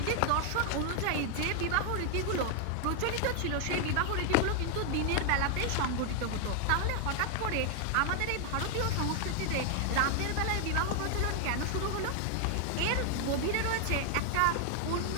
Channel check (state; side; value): different; both; correlation 0.00